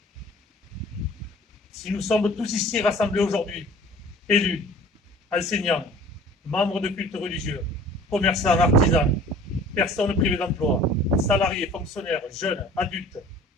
Si nous sommes tous ici rassemblés aujourd'hui, élus, enseignants, membres de cultes religieux, commerçants, artisans, personnes privées d'emploi, salariés, fonctionnaires, jeunes, adultes,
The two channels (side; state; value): both; normal; correlation 0.46